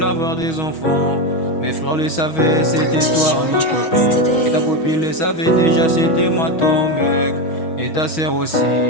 avoir des enfants. Mes frères le savaient, c'était toi ma copine. Et ta copine le savait déjà, c'était moi ton mec. Et ta sœur aussi,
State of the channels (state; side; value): late; right; 6.2 ms